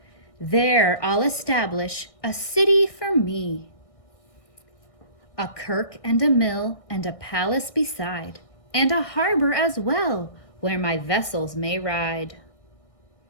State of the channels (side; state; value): right; late; 1.6 ms